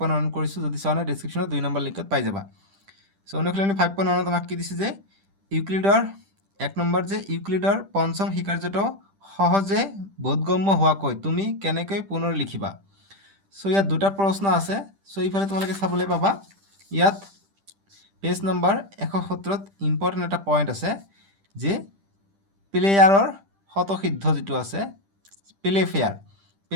কৰিছোঁ। যদি চোৱা নাই ডেছক্ৰিপশ্যনত 2 নম্বৰ লিংকত পাই যাবা। অনুশীলনী 5.1ত আমাক কি দিছে যে ইউক্লিডৰ 1 নম্বৰ যে ইউক্লিডৰ পঞ্চম শিকাৰ্যটো সহজে বোধগম্য হোৱাকৈ তুমি কেনেকৈ পুনৰ লিখিবা। ইয়াত দুটা প্ৰশ্ন আছে। ইফালে তোমালোকে চাবলৈ পাবা ইয়াত পেজ নম্বৰ 170ত ইম্পৰ্টেণ্ট এটা পইণ্ট আছে যে প্লেয়াৰৰ শতসিদ্ধ যিটো আছে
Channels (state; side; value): late; left; 10 ms